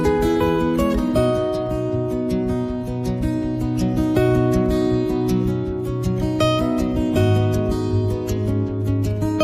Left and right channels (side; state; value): both; identical; correlation 1.00